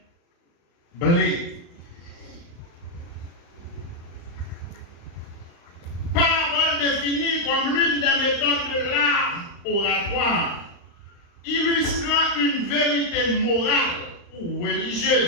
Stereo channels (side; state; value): right; late; 35 ms